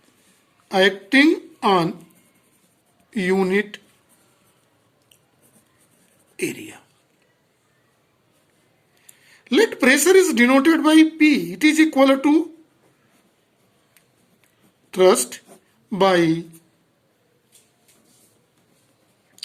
unit area. Let pressure is denoted by P. It is equal to thrust by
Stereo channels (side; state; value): both; identical; correlation 1.00